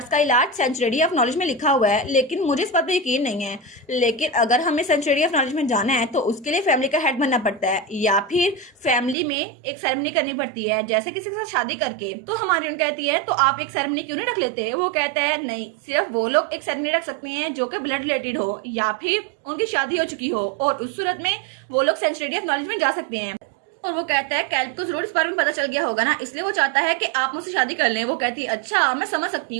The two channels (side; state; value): left; drops out; at 9.2 s